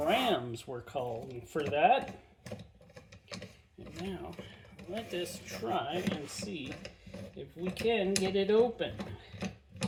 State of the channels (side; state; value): both; identical; correlation 1.00